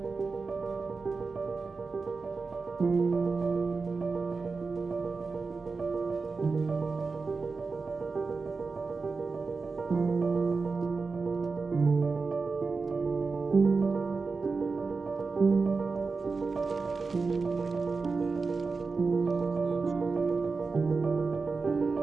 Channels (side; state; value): left; quieter; 4.4 dB